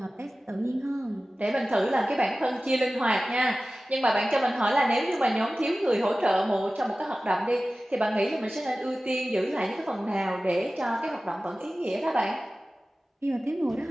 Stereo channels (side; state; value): both; normal; correlation 0.96